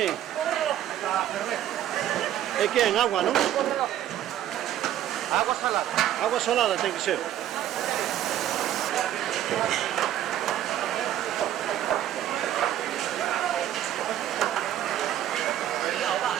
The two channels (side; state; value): left; quieter; 11.9 dB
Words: E que en agua, non? Agua salada. Agua salada ten que ser.